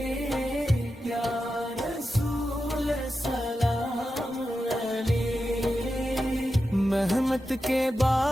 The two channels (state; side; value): normal; both; correlation 0.90